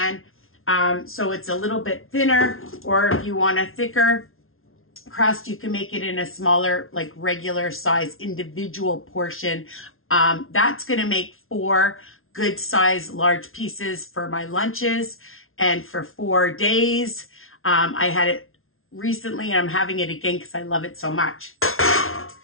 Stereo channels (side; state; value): right; late; 0.61 ms